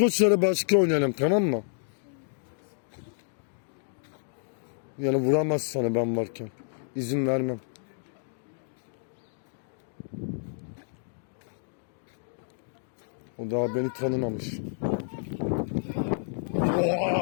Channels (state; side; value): silent; right; digital silence